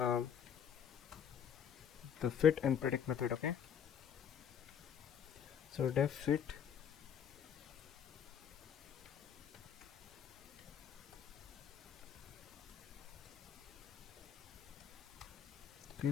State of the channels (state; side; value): quieter; right; 8.3 dB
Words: the fit and predict method. Okay, so def fit